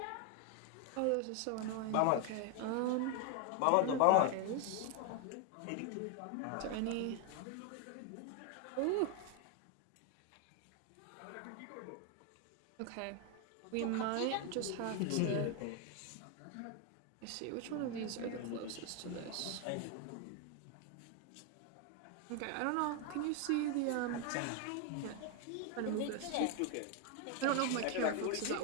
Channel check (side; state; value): both; different; correlation 0.01